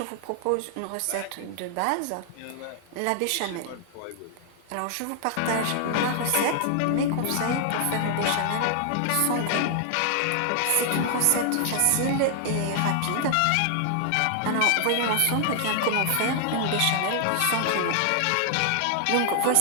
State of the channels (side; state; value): both; different; correlation 0.00